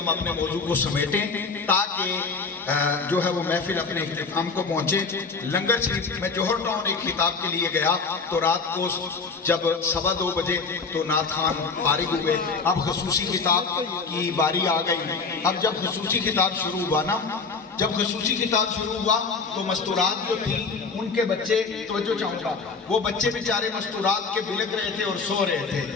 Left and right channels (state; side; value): quieter; right; 4.6 dB